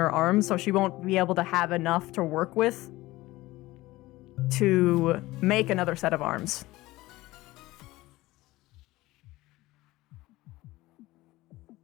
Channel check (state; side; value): quieter; right; 18.6 dB